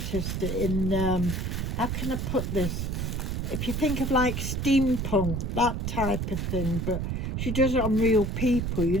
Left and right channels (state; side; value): noise; right; rumble, 2 dB below the sound